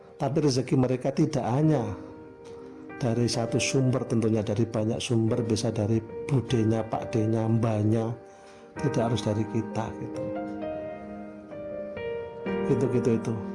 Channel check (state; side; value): identical; both; correlation 1.00